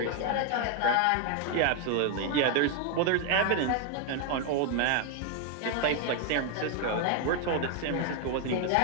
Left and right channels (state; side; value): different; both; correlation 0.01